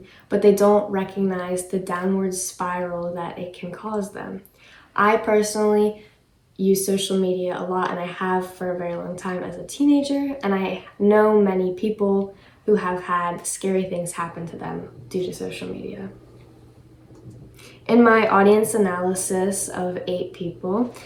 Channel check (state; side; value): identical; both; correlation 1.00